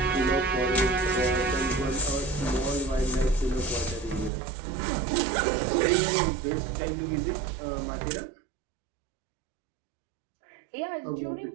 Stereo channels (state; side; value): drops out; left; at 4.3 s